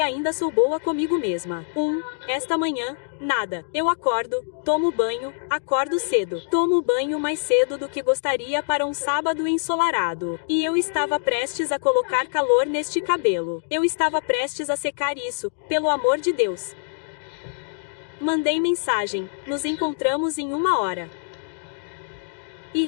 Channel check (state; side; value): silent; right; digital silence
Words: sou boa comigo mesma. Esta manhã, nada. Eu acordo, tomo banho, acordo cedo. Tomo banho mais cedo do que gostaria para um sábado ensolarado. E eu estava prestes a colocar calor neste cabelo. Eu estava prestes a secar isso, pelo amor de Deus. Mandei mensagem. Nos encontramos em 1 hora. E